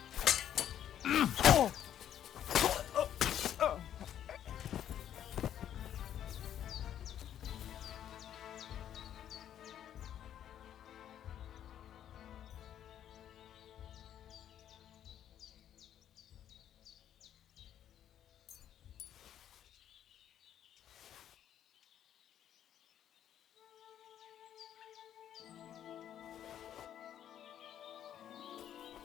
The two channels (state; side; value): quieter; right; 10.4 dB